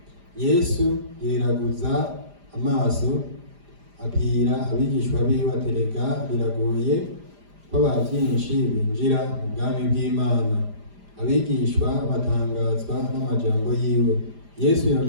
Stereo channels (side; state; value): left; late; 4.9 ms